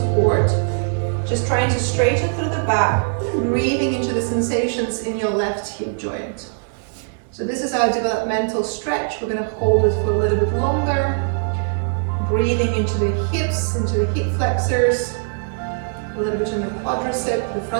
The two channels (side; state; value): left; silent; 65 dB below the other